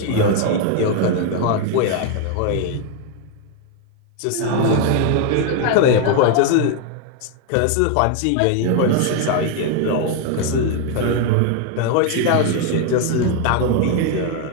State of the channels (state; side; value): different; both; correlation 0.01